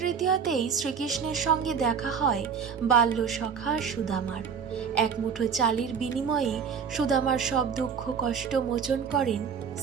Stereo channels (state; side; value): quieter; left; 6.6 dB